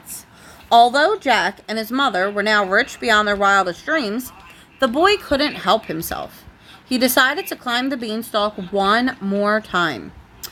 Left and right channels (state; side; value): identical; both; correlation 1.00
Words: Although Jack and his mother were now rich beyond their wildest dreams, the boy couldn't help himself. He decided to climb the beanstalk one more time.